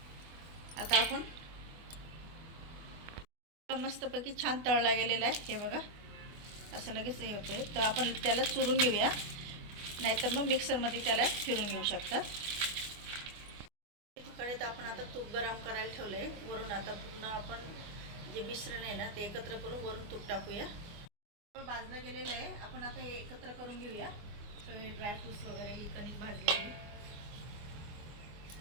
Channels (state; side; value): late; left; 24 ms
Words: आता आपण मस्तपैकी छान तळला गेलेला आहे. हे बघा, असं लगेच हे होते. तर आपण त्याला चुरून घेऊया, नाहीतर मग मिक्सरमध्ये त्याला फिरून घेऊ शकता. कढईत आपण आता तूप गरम करायला ठेवलं आहे. वरून आता पूर्ण आपण जे मिश्रण आहे ना, ते एकत्र करून वरून तूप टाकूया. भाजलं गेलेलं आहे. आपण आता हे एकत्र करून घेऊया. सगळे ड्रायफ्रूट्स वगैरे, ही कणिक भाजलेली